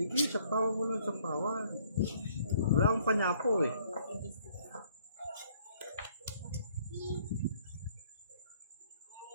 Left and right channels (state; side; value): inverted; both; correlation -0.63